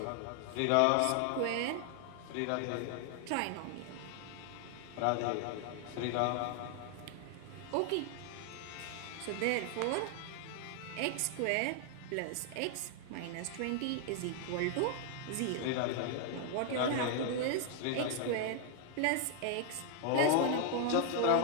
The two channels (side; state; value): both; different; correlation 0.00